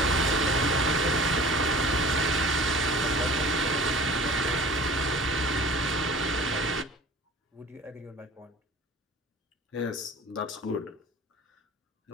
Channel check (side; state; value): both; normal; correlation 0.43